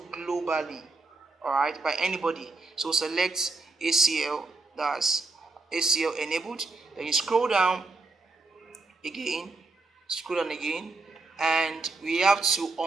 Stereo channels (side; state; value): left; quieter; 3.5 dB